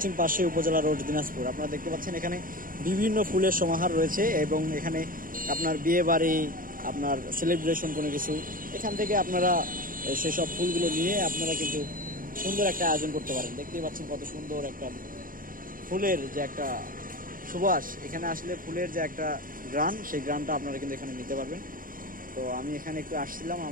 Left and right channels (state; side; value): late; left; 0.40 ms